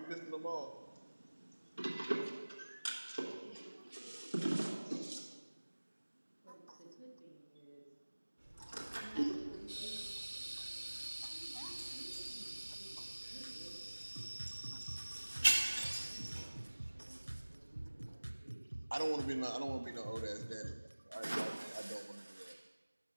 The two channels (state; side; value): inverted; both; correlation -1.00